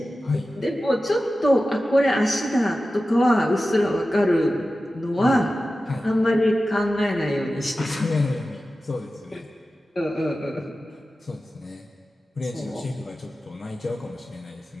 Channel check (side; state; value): both; normal; correlation 0.94